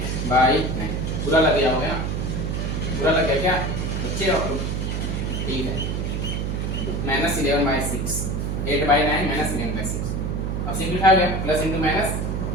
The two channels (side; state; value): right; noise; hum, 1 dB below the sound